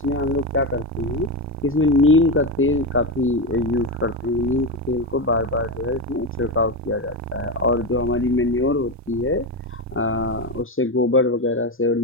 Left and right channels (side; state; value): both; normal; correlation 0.14